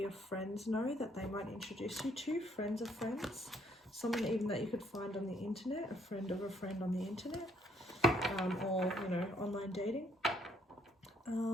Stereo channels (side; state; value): both; normal; correlation 0.67